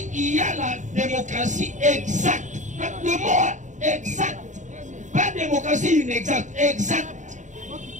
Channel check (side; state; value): left; late; 0.36 ms